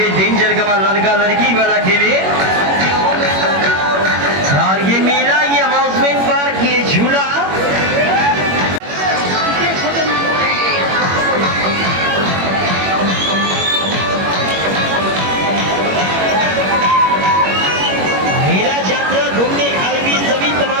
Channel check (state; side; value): late; left; 21 ms